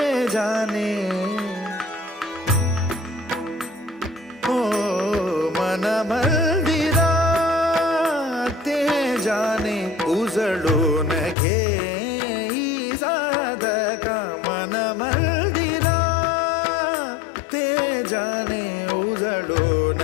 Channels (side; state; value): right; drops out; at 11.4 s